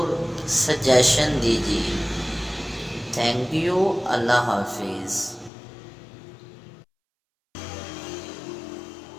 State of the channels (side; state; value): right; drops out; at 5.5 s